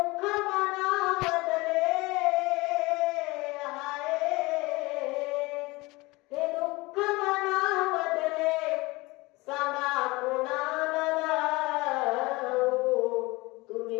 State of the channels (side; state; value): right; quieter; 22.7 dB